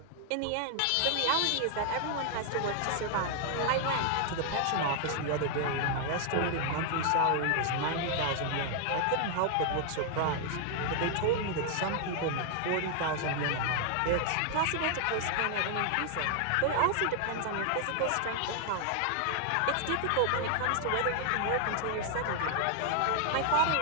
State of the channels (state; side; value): different; both; correlation 0.00